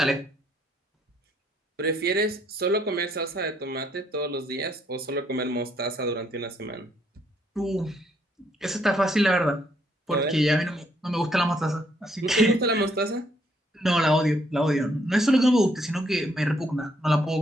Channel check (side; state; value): both; normal; correlation 0.71